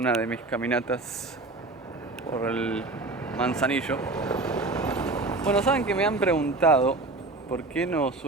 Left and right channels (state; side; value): quieter; left; 3.2 dB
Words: de mis caminatas por el Manzanillo. Bueno, saben que me han preguntado por qué no